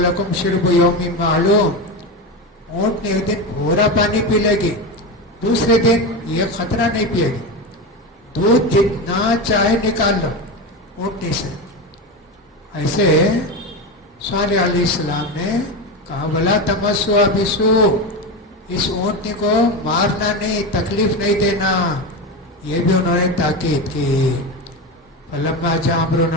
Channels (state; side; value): normal; both; correlation 0.19